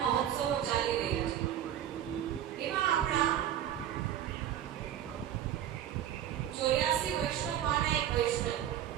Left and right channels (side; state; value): left; quieter; 10.9 dB